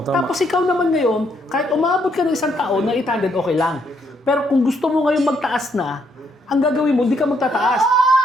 tama. Tapos ikaw naman ngayon, kahit umabot ka ng isang taon na 800, okay lang. Pero kung gusto mo ngayon magtaas na, ang gagawin mo, hindi ka magtataas.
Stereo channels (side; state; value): both; normal; correlation 0.73